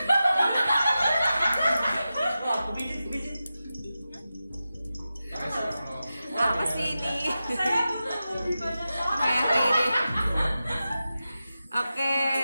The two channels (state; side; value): inverted; both; correlation -0.92